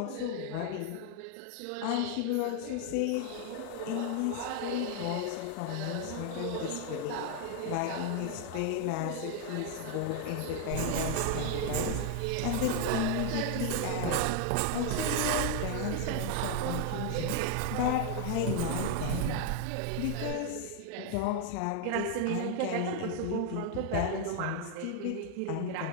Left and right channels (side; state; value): both; different; correlation 0.00